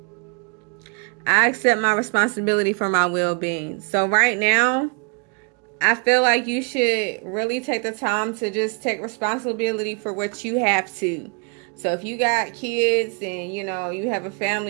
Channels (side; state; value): left; quieter; 35.7 dB